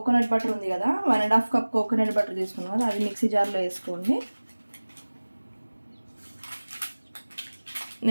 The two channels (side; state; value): both; inverted; correlation -1.00